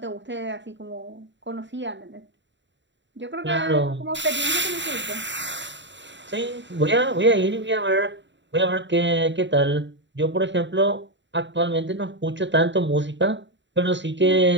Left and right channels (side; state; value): left; late; 0.53 ms